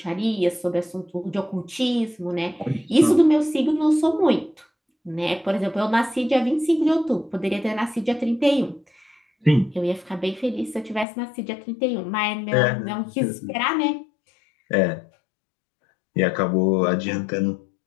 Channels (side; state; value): right; drops out; at 11.1 s